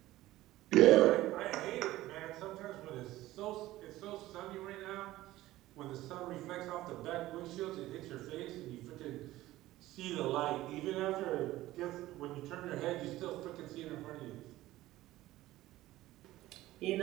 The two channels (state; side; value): quieter; left; 16.2 dB